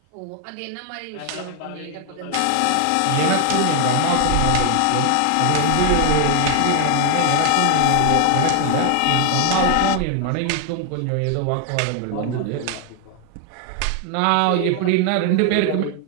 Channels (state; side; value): different; both; correlation 0.01